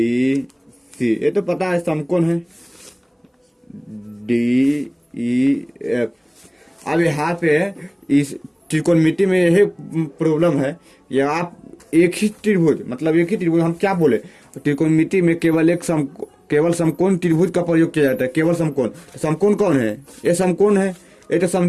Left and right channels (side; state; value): both; identical; correlation 1.00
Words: सी, ये तो पता है समकोण है, डी ई एफ। अब यहाँ पे इस त्रिकोणमिति में यही प्रॉब्लम है, ये आप एक ही त्रिभुज, मतलब एक ही त्रिभुज, हम क्या बोले, त्रिकोणमिति में केवल एक केवल समकोण त्रिभुज का प्रयोग किया जाता है, केवल समकोण। तो समकोण कौन है, ये समकोण है, ये तो